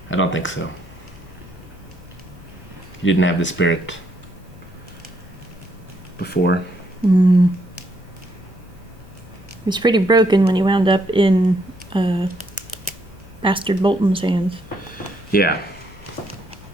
I don't think so. He didn't have the spirit before. He was pretty broken when he wound up in Bastard Bolton's hands. Yeah.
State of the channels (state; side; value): normal; both; correlation 0.73